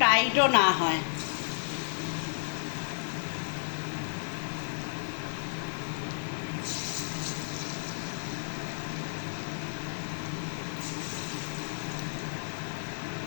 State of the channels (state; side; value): silent; right; 56 dB below the other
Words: টাইটও না হয়।